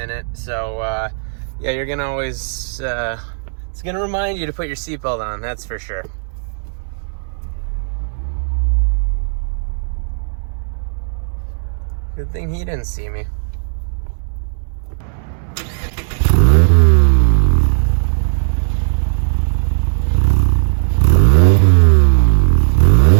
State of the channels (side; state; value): left; silent; digital silence